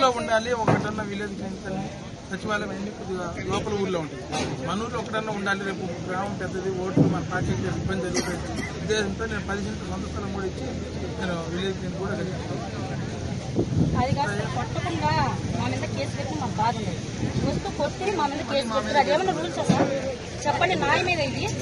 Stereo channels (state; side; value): identical; both; correlation 1.00